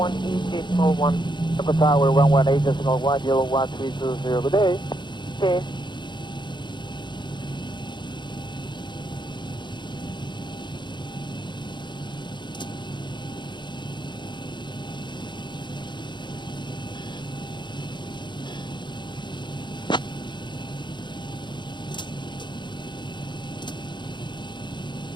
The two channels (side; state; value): right; late; 0.22 ms